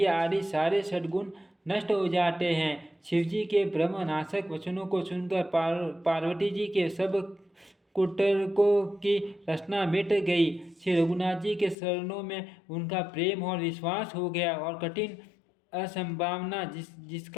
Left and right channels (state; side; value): drops out; right; at 11.8 s